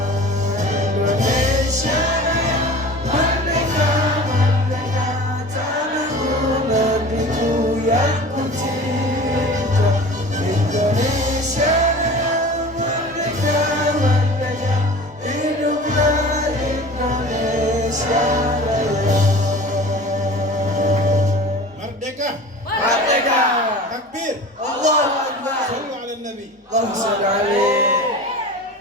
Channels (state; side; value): normal; both; correlation 0.39